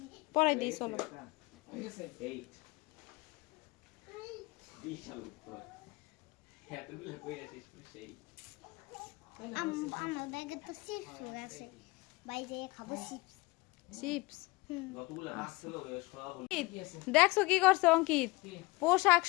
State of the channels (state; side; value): quieter; right; 23.4 dB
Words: পড়াই দিই, চলো। ঠিক আছে 8 বিশাল উপর এতগুলো কই আসিস সেই আমার ব্যাগে তো চিপস আছে, বাইরে খাবো চিপস। চিপস যতগুলো মাছ ছিল সব দেখছো কি করছে অঙ্কিত? পোশাক